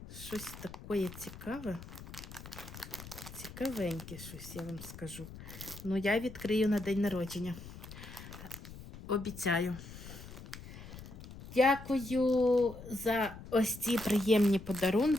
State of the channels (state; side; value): noise; left; rumble, 14 dB below the sound